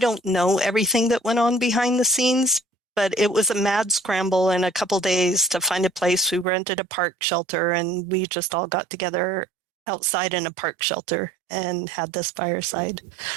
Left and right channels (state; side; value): drops out; left; at 6.5 s